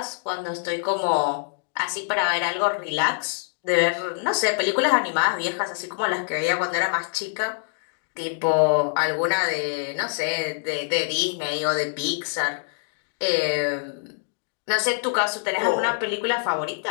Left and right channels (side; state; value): right; silent; digital silence